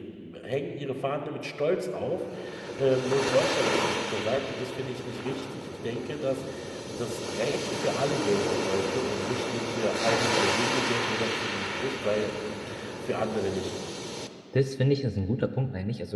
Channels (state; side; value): identical; both; correlation 1.00